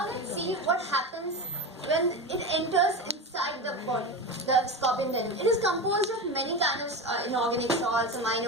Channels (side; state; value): both; normal; correlation 0.22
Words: let's see what happens when it enters inside the body, the scorpion venom. It is composed of many kinds of inorganic salts,